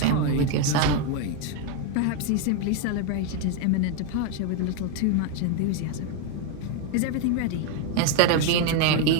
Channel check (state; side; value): different; both; correlation 0.01